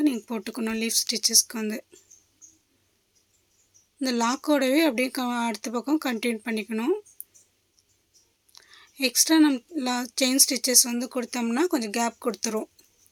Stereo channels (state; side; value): identical; both; correlation 1.00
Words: நீங்கள் போட்டுக்கணும். லீஃப் ஸ்டிச்சஸ்க்கு வந்து இந்த லாக்கோடவே அப்படியே அடுத்த பக்கம் கண்டினியூ பண்ணிக்கணும். எக்ஸ்ட்ரா நம்ம செயின் ஸ்டிச்சஸ் வந்து கொடுத்தோம்னா கொஞ்சம் கேப் கொடுத்துரும்.